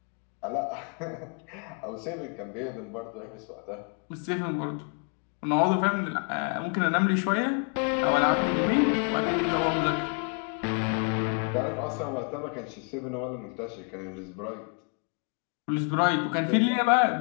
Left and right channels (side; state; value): right; quieter; 39.5 dB